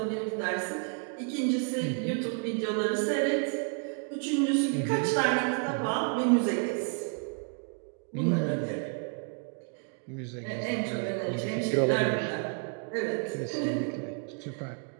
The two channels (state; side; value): quieter; left; 39.8 dB